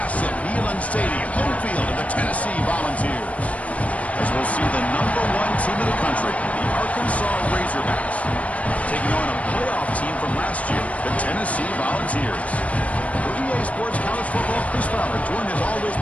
Neyland Stadium, home field of the Tennessee Volunteers. As we'll see the number 1 team in the country, the Arkansas Razorbacks, taking on a playoff team from last year, the Tennessee Volunteers. For EA Sports College Football, Chris Fowler, joined as always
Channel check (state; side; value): late; right; 0.066 ms